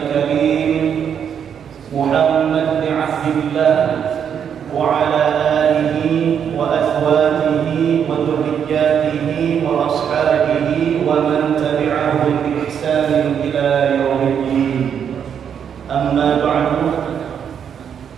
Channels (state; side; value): quieter; left; 8.0 dB